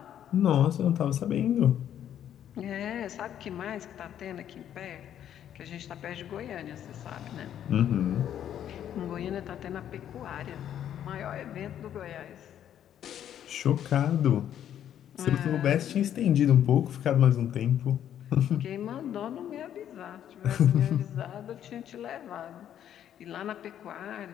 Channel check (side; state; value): right; quieter; 10.3 dB